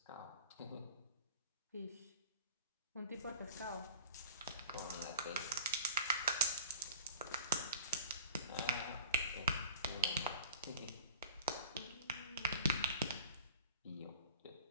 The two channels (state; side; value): inverted; both; correlation -0.43